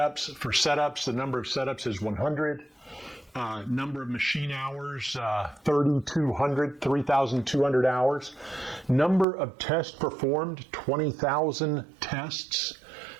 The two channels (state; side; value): drops out; left; at 9.2 s